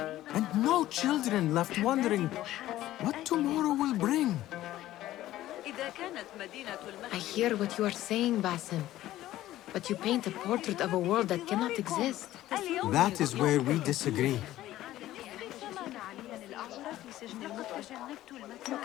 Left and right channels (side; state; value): right; quieter; 14.5 dB